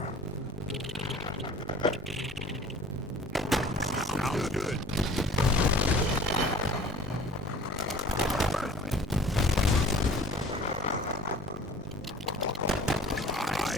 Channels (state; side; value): normal; both; correlation 0.47